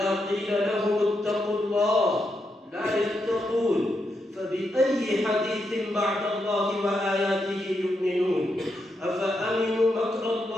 قيل لهم اتقوا الله لا يتقون، فبأي حديث بعد الله وآياته يؤمنون؟ أفأمنوا مكر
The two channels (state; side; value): normal; both; correlation 0.83